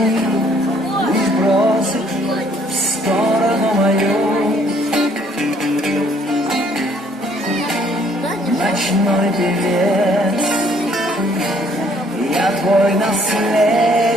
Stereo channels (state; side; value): normal; both; correlation 0.63